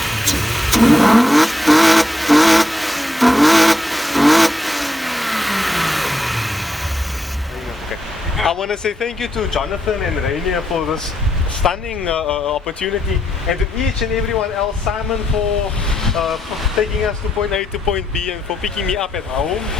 want to say thank you to Jonathan and Rainer for this stunning opportunity, and to each and everyone else, Simon for taking us to point A to point B and for picking me up at home.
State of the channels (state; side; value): normal; both; correlation 0.80